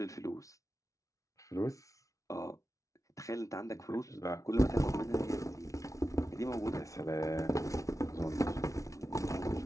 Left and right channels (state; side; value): late; right; 0.16 ms